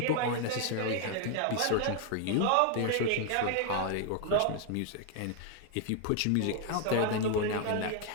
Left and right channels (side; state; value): both; different; correlation 0.01